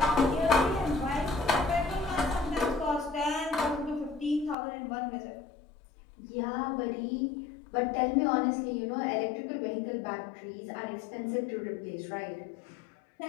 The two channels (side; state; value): right; drops out; at 4.5 s